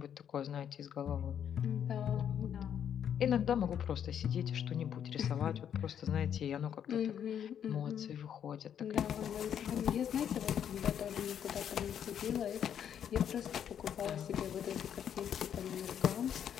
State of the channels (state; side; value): quieter; right; 9.0 dB